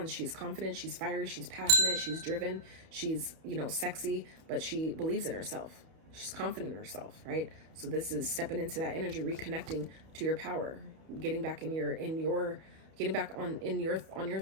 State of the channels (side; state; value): left; late; 32 ms